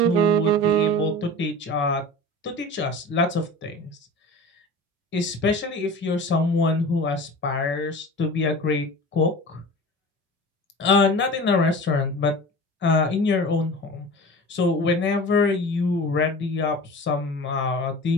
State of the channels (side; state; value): both; normal; correlation 0.36